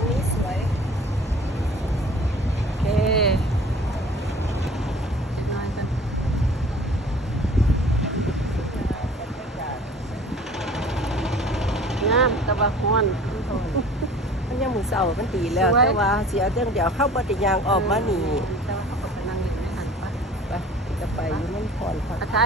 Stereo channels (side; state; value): both; normal; correlation 0.46